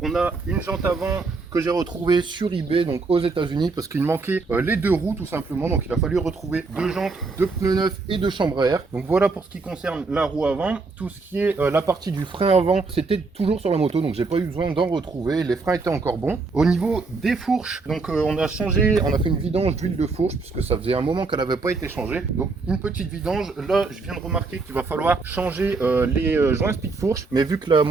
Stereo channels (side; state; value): left; quieter; 4.0 dB